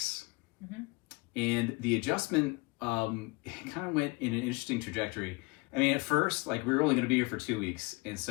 Mm-hmm. And the adjustment, it kind of went in an interesting trajectory. I mean, at first, we were only going to be here for 2 weeks. And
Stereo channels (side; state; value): right; quieter; 26.6 dB